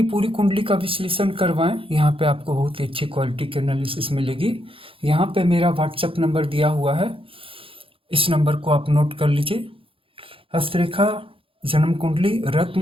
पूरी कुंडली का विश्लेषण करवाएं, यहाँ पे आपको बहुत ही अच्छी क्वालिटी की एनालिसिस मिलेगी। यहाँ पे मेरा व्हाट्सएप नंबर दिया हुआ है, इस नंबर को आप नोट कर लीजिए। हस्तरेखा, जन्म कुंडली, रत्न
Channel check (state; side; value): late; left; 0.26 ms